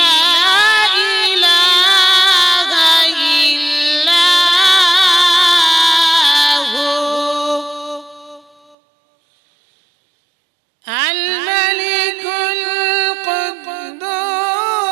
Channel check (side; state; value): left; drops out; at 8.8 s